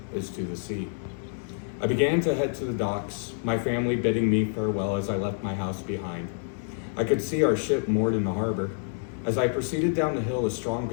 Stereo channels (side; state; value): right; silent; 60 dB below the other